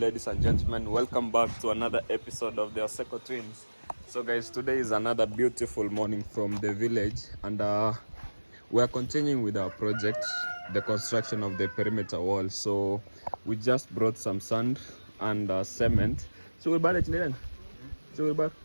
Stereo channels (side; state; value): both; inverted; correlation -1.00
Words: and gentlemen. Welcome back to another episode of the Oseko Twins. So guys, today is another beautiful morning from the village, and we are continuing with our project, the construction of the perimeter wall. So we just brought some sand and cement. So